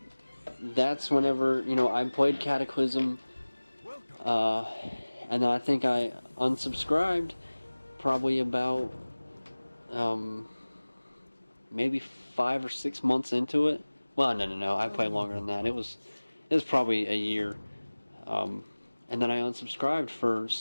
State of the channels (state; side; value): inverted; both; correlation -1.00